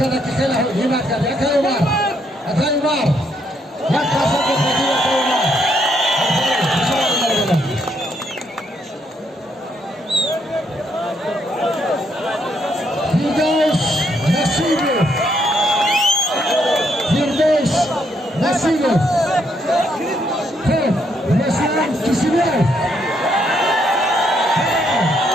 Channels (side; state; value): both; normal; correlation 0.74